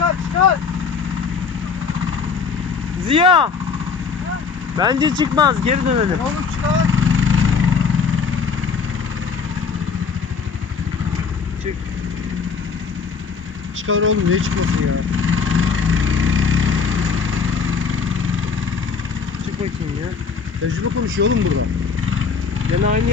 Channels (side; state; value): right; quieter; 5.7 dB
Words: Ziya! Bence çıkmaz. Geri dönelim. Oğlum çıkar. Çık. Çıkar oğlum, niye çıkmasın ya? Çık bakayım ya. Tecrübe konuşuyor oğlum burada. Gene aynı